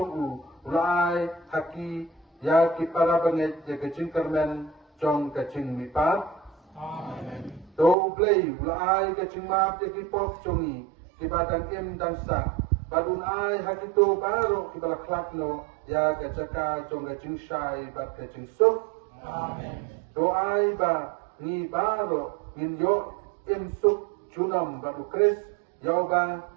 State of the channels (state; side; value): drops out; left; at 8.0 s